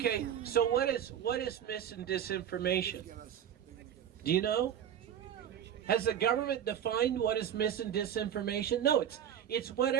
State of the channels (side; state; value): left; quieter; 9.6 dB